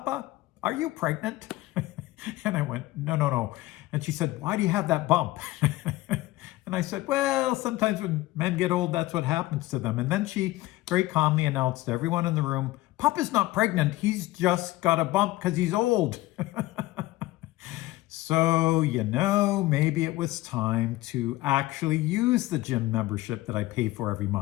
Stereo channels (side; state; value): right; quieter; 18.0 dB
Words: are you pregnant?" And I went, no. And she said, "Why do you have that bump?" And I said, "Well, sometimes when men get old, that's what happens to them." And then she very calmly announced to everyone in the room, "Papa's not pregnant. He's just got a bump because he's old." So, maybe it was time to actually use the gym membership that I pay for every